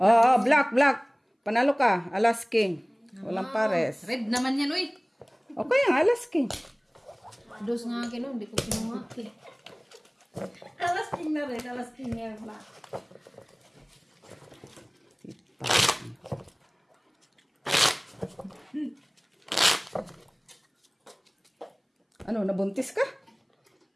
black. Panalo ka. Alas King. Walang pares. Red naman yan, uy. Okay, ang Alas King. Dos nga akin, no? Hindi ko kinuha. Alas king na rin, alas king na black. Ano, nabuntis ka?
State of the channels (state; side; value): identical; both; correlation 1.00